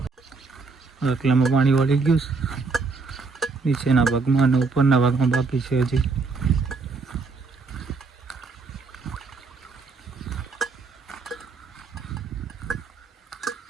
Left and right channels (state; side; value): quieter; left; 4.4 dB